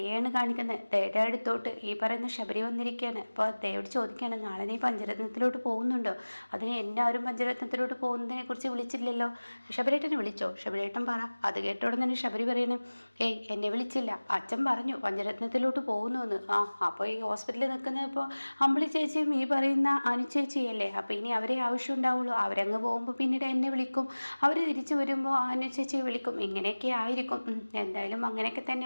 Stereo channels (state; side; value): inverted; both; correlation -1.00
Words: കാണിക്കുന്നത്. ദയയുടെ അടുത്തോട്ട് ഈ പറയുന്ന ശബരി വന്നിരിക്കുകയാണ്. അപ്പോൾ ദയോട് ചോദിക്കുകയാണ്, നാളെ നീ പഞ്ചരത്നത്തിലോട്ട് പോകുന്നുണ്ടോ? അതിന് എല്ലാവരും പഞ്ചരത്നത്തിലോട്ട് പോകുന്നതിനെ കുറിച്ച് വിളിച്ചില്ലല്ലോ, ശബരേട്ടനെ വിളിച്ചോ? ശബരേട്ടൻ പറ. അത് കേട്ടോടെ തന്നെ ശബരി പറയണേ, ഏയ് എന്നെ വിളിച്ചില്ല, അച്ഛൻ പറഞ്ഞു പഞ്ചരത്നത്തിലോട്ട് പോകുന്നു എന്ന്. ആ അപ്പോൾ ഈ ഹോസ്പിറ്റലിൽ നിൽക്കുന്ന ഇപ്പോൾ അമ്പിളി ചേച്ചിയും ഈ പറയുന്ന അനു ചേച്ചിയല്ലേ, അപ്പോൾ ഇനി അവരെ ആവശ്യം ഉണ്ടാവുള്ളൂ. അവരങ്ങ് പോകുമ്പോൾ പിന്നീട് എന്നെ വിളിക്കും, അവർ തിരിച്ചു വരുമ്പോൾ അനു ചേച്ചിയെ വിളിക്കും, ഇങ്ങനെയൊക്കെ ആയിരിക്കും. എന്തായാലും അങ്ങനെയൊക്കെ